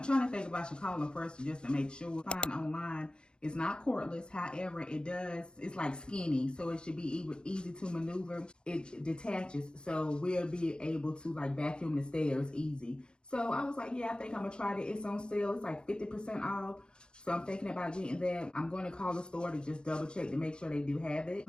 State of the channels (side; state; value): right; late; 0.050 ms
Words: trying to think if I should call them first just to make sure. Find online. It's not cordless, however, it's like skinny, so it should be easy to maneuver. It detaches, so we'll be able to like vacuum the stairs easy. So I was like, yeah, I think I'm gonna try it. It's on sale, it's like 50% off. So I'm thinking about getting that. I'm going to call the store to just double check to make sure they do have it.